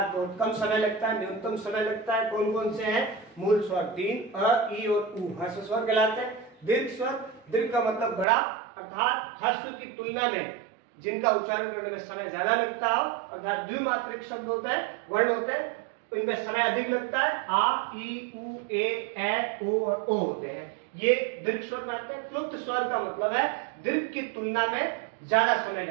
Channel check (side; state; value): left; drops out; at 8.2 s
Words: बहुत कम समय लगता है, न्यूनतम समय लगता है। कौन कौन से हैं? मूल स्वर तीन, अ, ई और उ ह्रस्व स्वर कहलाते हैं। दीर्घ स्वर, दीर्घ का मतलब बड़ा, अर्थात ह्रस्व की तुलना में जिनका उच्चारण करने में समय ज्यादा लगता हो, अर्थात द्विमात्रिक शब्द होते हैं, वर्ण होते हैं, इनमें समय अधिक लगता है। आ, ई, उ, ए, ओ और ओ होते हैं, ये दीर्घ स्वर में आते हैं। प्लुप्त स्वर का मतलब है दीर्घ की तुलना में ज्यादा समय